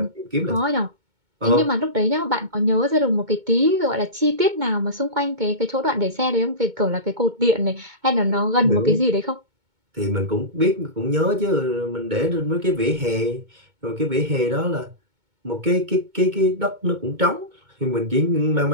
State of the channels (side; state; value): left; late; 2.2 ms